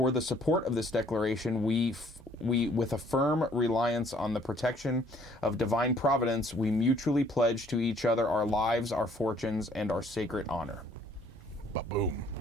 the support of this declaration, we with a firm reliance on the protection of divine providence, we mutually pledge to each other our lives, our fortunes, and our sacred honor. Ba-boom.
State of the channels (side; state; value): both; normal; correlation 0.61